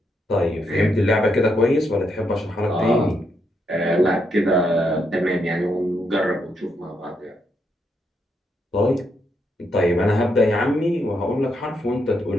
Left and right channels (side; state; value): both; normal; correlation 0.79